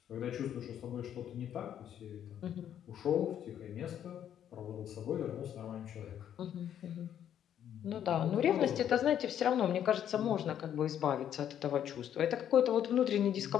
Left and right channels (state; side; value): quieter; right; 9.9 dB